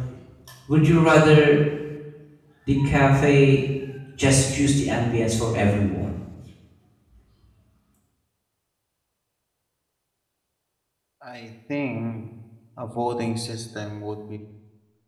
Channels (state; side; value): identical; both; correlation 1.00